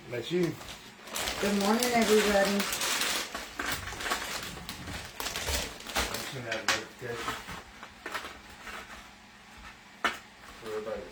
That's you. Good morning, everybody. Send out a notification for everybody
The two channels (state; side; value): identical; both; correlation 1.00